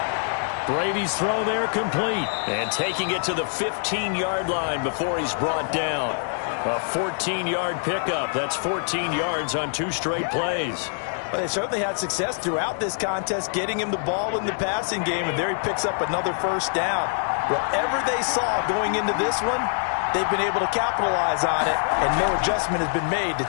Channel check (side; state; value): right; silent; digital silence